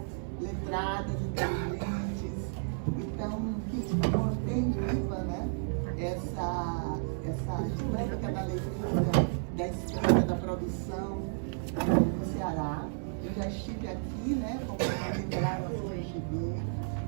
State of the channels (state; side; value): silent; left; 56 dB below the other